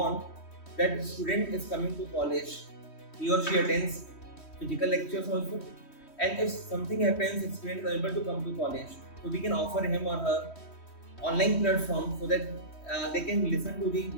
that the student is coming to college, he or she attends physical lectures also, and if something happens, if student is unable to come to college, so we can offer him or her online platform so that they can listen to the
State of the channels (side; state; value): right; late; 3.1 ms